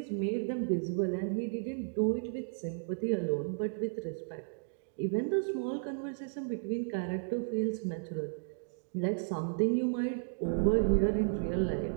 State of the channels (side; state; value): left; silent; digital silence